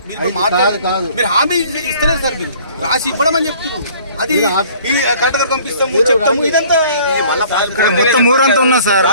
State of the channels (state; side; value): inverted; both; correlation -0.53